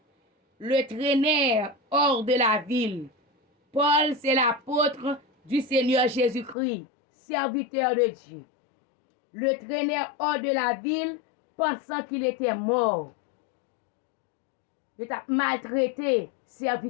le traînèrent hors de la ville. Paul, c'est l'apôtre du Seigneur Jésus-Christ, serviteur de Dieu. Le traînèrent hors de la ville, pensant qu'il était mort. Il t'a maltraité,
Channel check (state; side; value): drops out; right; at 6.6 s